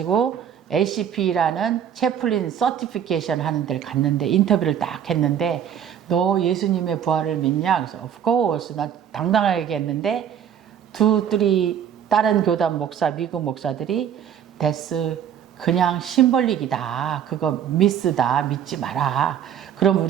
ACP라는 채플린 서티피케이션 하는 데를 갔는데 인터뷰를 딱 했는데 너 예수님의 부활을 믿냐? 그래서 of course 나 당당하게 얘기했는데 2, 3 다른 교단 목사 미국 목사들이 데스 그냥 심벌릭이다. 그거 미스다. 믿지 마라. 그럼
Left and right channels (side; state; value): left; quieter; 9.1 dB